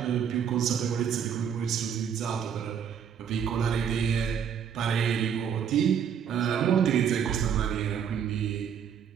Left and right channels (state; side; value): quieter; left; 8.0 dB